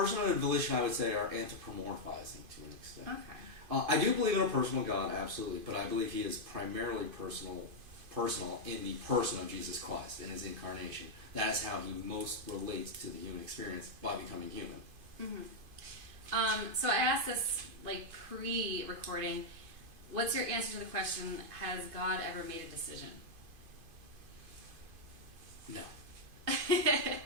and volition, I would say, are anthropomorphizing to an extent. Okay. I do believe in a personal God, absolutely, but I believe he is primarily personal in the person of Jesus Christ in his incarnation. That is how he most relates to the human experience, by becoming human. Mm-hmm. So I asked this pre-recording. What's your answer to the question, has God ever made a decision? No.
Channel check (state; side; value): late; left; 2.5 ms